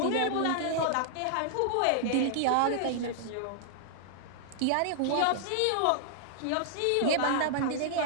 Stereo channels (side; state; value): both; different; correlation -0.01